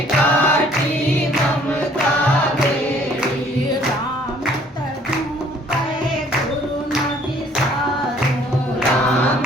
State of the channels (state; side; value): normal; both; correlation 0.58